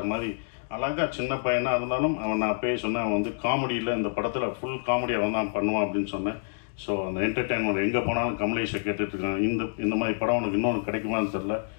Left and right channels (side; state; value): right; silent; digital silence